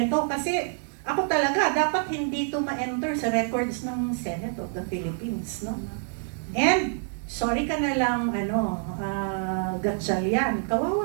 kasi ako talaga dapat hindi to ma-enter sa records ng Senate of the Philippines, no? And sorry ka na lang, Gatchalian,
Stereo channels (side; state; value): left; silent; 57 dB below the other